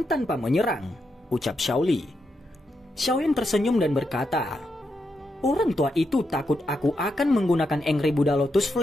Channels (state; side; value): normal; both; correlation 0.83